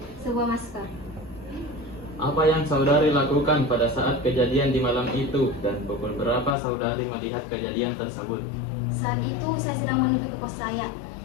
sebuah masker. Apa yang saudari lakukan pada saat kejadian di malam itu dan pukul berapa saudari melihat kejadian tersebut? Saat itu saya sedang menuju ke kos saya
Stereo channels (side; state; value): right; drops out; at 6.6 s